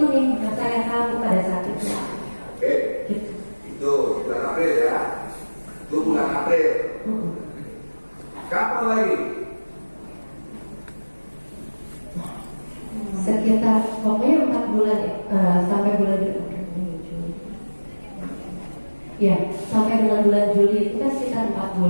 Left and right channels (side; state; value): both; inverted; correlation -1.00